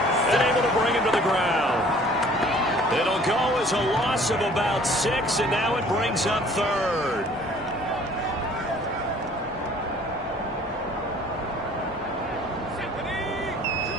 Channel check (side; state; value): both; normal; correlation 0.53